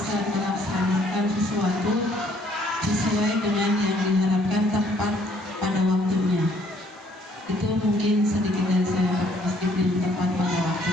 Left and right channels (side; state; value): both; normal; correlation 0.63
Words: melaksanakan sesuatu sesuai dengan yang diharapkan tepat pada waktunya. Itu mungkin sedikit dari saya, disiplin tepat pada